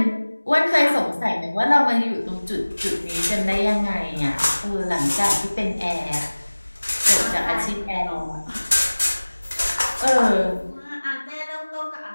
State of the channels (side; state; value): both; inverted; correlation -1.00